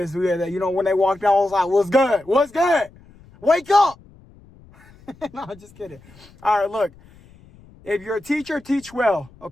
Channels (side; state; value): left; noise; rumble, 25 dB below the sound